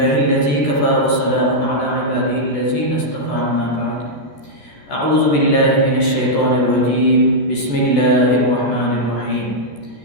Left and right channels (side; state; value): right; late; 13 ms